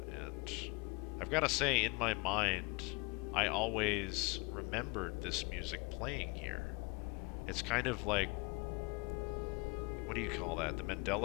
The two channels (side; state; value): right; quieter; 27.1 dB